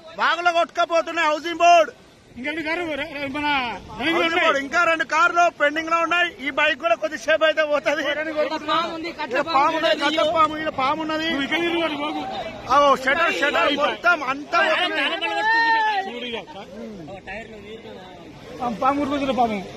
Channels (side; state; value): both; identical; correlation 1.00